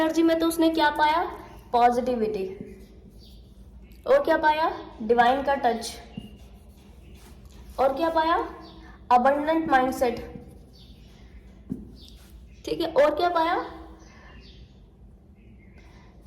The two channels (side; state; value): both; identical; correlation 1.00